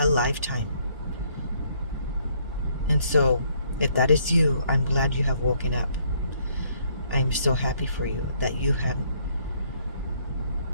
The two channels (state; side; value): inverted; both; correlation -0.67